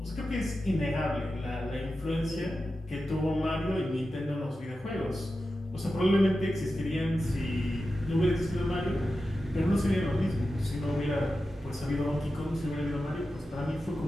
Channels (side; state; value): both; normal; correlation 0.92